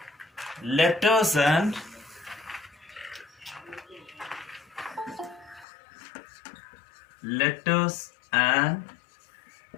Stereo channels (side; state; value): right; drops out; at 5.7 s